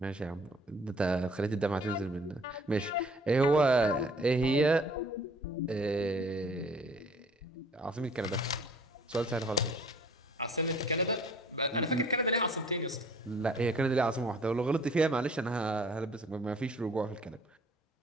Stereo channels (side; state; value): both; normal; correlation 0.54